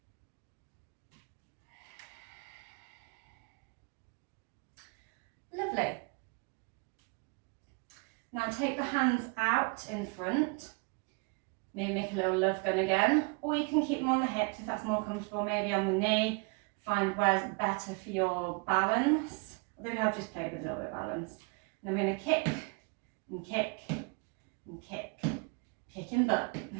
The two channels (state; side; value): quieter; left; 32.7 dB